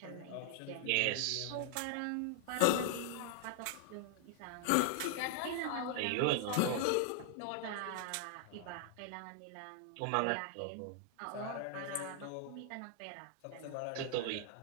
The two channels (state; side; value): different; both; correlation 0.00